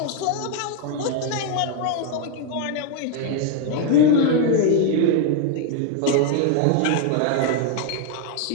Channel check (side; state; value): both; different; correlation 0.01